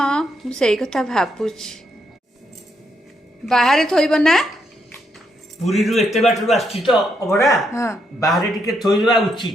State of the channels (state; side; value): normal; both; correlation 0.77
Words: मु सेई कथा भाबुछि बाहर थोइब ना पुरी रु एते बाटरू आछि तो अबड़ा हां बाहर टिके थोइबा